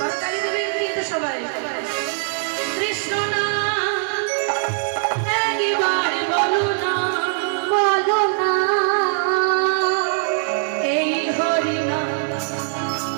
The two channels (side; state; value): left; silent; digital silence